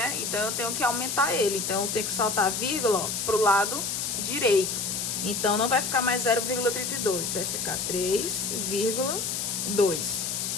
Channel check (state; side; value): noise; left; hiss, 2 dB below the sound